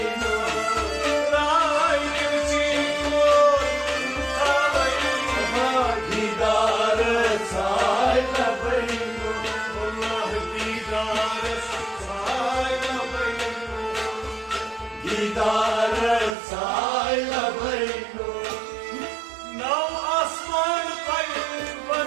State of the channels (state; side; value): drops out; left; at 16.4 s